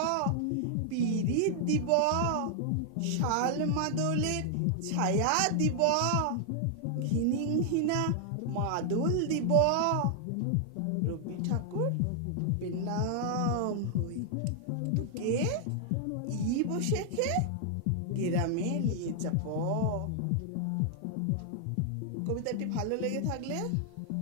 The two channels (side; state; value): both; different; correlation 0.00